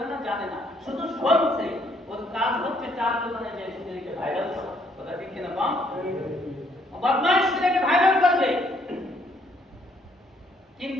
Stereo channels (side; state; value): both; normal; correlation 0.68